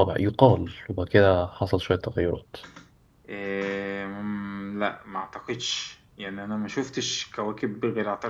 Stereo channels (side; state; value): both; identical; correlation 1.00